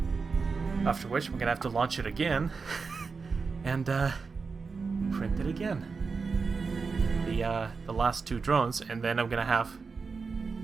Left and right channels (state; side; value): quieter; left; 4.8 dB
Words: After which, we're gonna have to launch it again and print it again. The last 2 drones, and then I'm gonna have